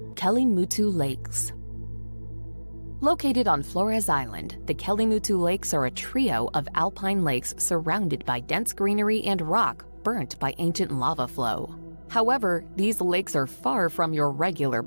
Kelimutu Lakes. Located on Flores Island, the Kelimutu Lakes are a trio of alpine lakes surrounded by dense greenery and rock burnt by ancient lava flow. However, these lakes are far from your regular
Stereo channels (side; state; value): both; inverted; correlation -1.00